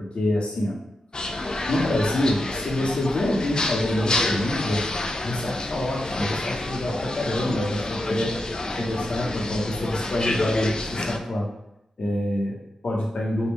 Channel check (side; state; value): both; normal; correlation 0.87